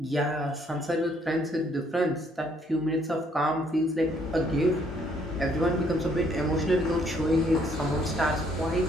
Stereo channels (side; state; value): both; normal; correlation 0.66